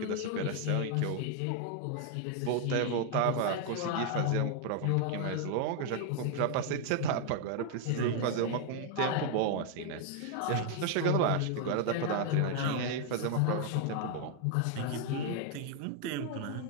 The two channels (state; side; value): different; both; correlation 0.00